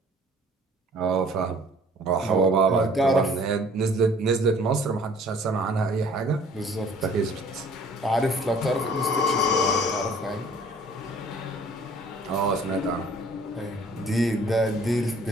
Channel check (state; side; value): normal; both; correlation 0.53